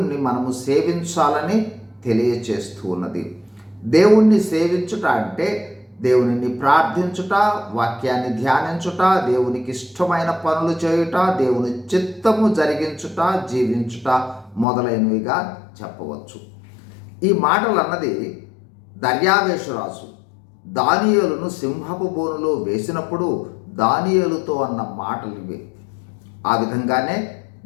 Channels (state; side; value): drops out; right; at 14.7 s